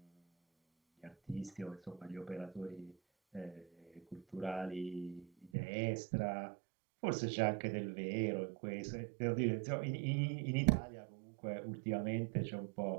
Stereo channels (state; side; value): drops out; left; at 5.5 s